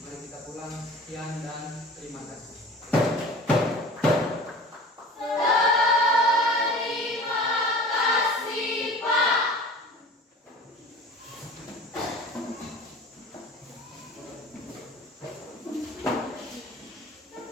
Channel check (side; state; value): both; normal; correlation 0.41